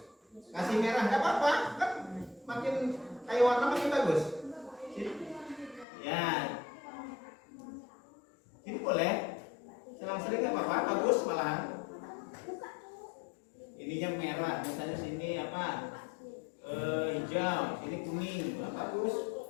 Kasih merah nggak apa-apa, kan makin kayak warna makin bagus. Ya. Ini boleh. Selang-seling nggak apa-apa, bagus malahan. Ininya merah, misalnya sini apa? Hijau, sini kuning, nah, bagus.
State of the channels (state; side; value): drops out; right; at 5.9 s